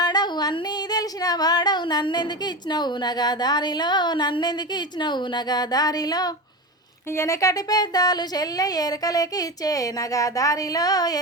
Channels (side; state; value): both; normal; correlation 0.23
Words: అన్నీ తెలిసిన వాడవు నన్నెందుకు ఇచ్చినవు నగదారిలో, నన్నెందుకు ఇచ్చినవు నగదారిలో. వెనకటి పెద్దాలు చెల్లె ఎరకలేకి ఇచ్చే నగదారిలో,